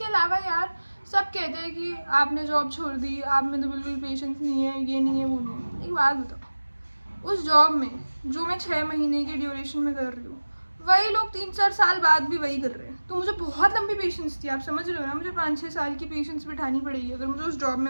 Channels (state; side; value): inverted; both; correlation -1.00